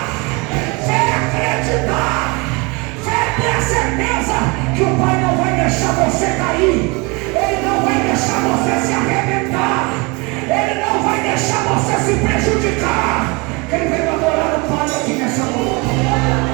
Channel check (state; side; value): quieter; left; 27.9 dB